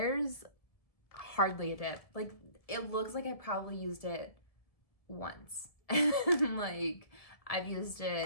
hardly a dip. Like it looks like I probably used it once. Like I've used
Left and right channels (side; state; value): right; late; 1.7 ms